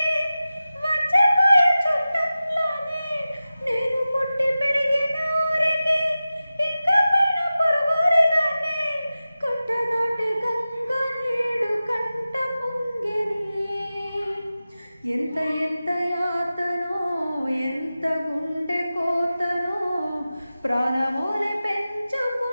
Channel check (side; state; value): both; inverted; correlation -0.95